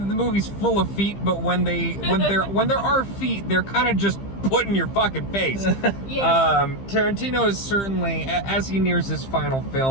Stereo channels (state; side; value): late; right; 15 ms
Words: the movie's full of feet, but when there are feet, they're kind of just put in your fucking face. Yes. Tarantino is certainly, as he nears his final